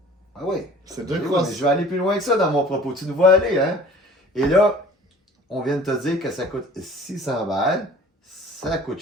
Ah oui? C'est 2 Oui, crosses. mais je vais aller plus loin que ça dans mon propos. Tu nous vois aller, hein? Et là, on vient de te dire que ça coûte 600 balles. Ça coûte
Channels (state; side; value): normal; both; correlation 0.48